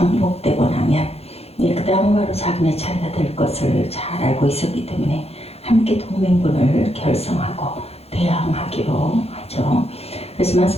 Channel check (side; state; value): right; late; 0.29 ms